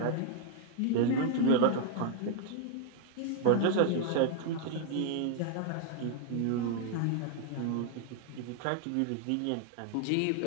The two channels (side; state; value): both; different; correlation 0.00